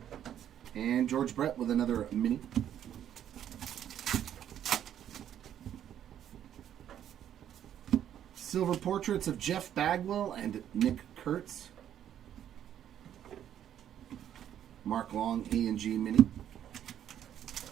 And George Brett with another mini. Silver portraits of Jeff Bagwell and Nick Kurtz. Mark Long A&G Mini.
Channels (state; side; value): quieter; left; 10.3 dB